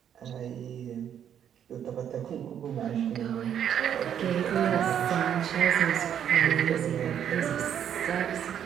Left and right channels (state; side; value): quieter; left; 9.2 dB